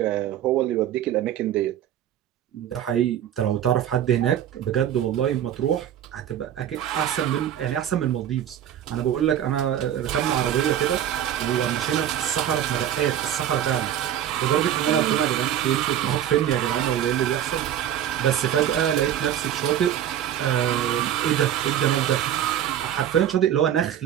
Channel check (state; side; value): quieter; left; 10.6 dB